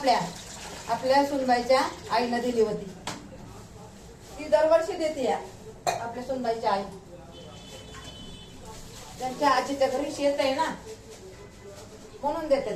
आपल्या सुनबाईच्या आईनं दिली होती. ती दरवर्षी देते या आपल्या सुनबाईच्या आई. त्यांच्या आजीच्या घरी शेत आहे ना, म्हणून देतात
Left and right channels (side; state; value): both; identical; correlation 1.00